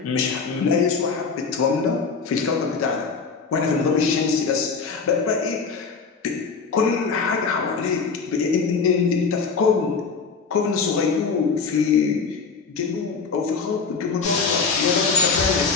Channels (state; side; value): quieter; right; 5.1 dB